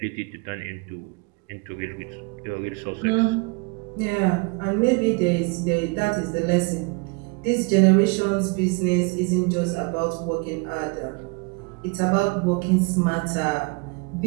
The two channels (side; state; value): left; quieter; 29.4 dB